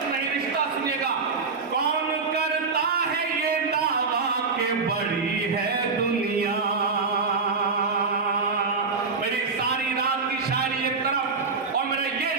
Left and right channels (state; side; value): quieter; left; 4.5 dB